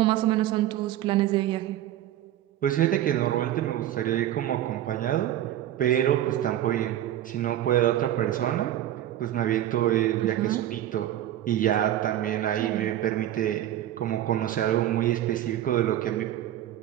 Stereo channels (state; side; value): quieter; left; 12.7 dB